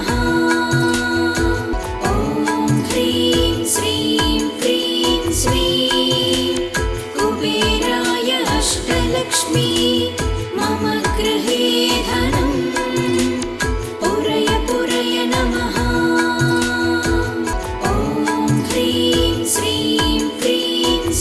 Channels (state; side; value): identical; both; correlation 1.00